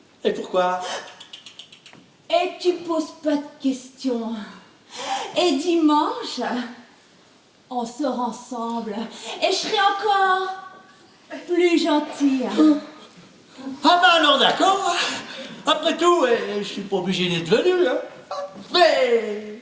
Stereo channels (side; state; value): both; identical; correlation 1.00